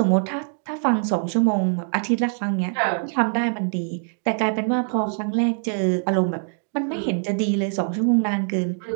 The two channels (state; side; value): silent; left; 56 dB below the other